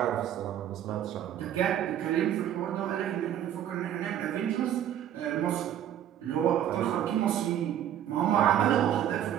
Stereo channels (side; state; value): left; quieter; 10.8 dB